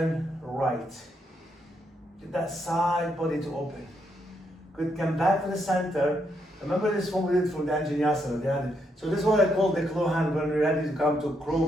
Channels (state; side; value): normal; both; correlation 0.77